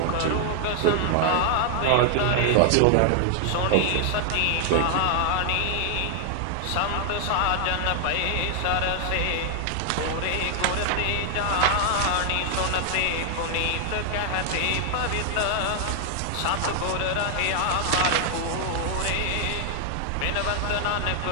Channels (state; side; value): different; both; correlation 0.00